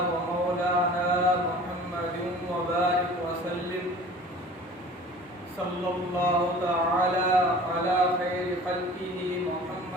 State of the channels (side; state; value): both; normal; correlation 0.44